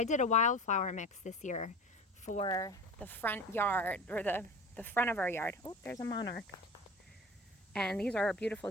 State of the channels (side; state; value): both; normal; correlation 0.35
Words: did a wildflower mix this year for the front yard, or the front of our yard. Oh, there's a monarch. And these are our